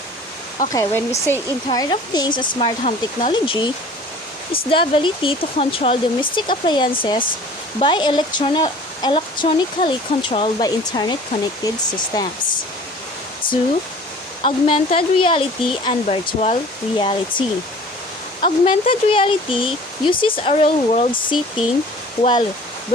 Okay, when we say Internet of Things and Smart Home Technology, is the ability to control domestic appliances by electronically controlled by internet-connected systems. 2. Augmented reality and virtual reality. Augmented reality uses a real-world setting, while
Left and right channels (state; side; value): normal; both; correlation 0.46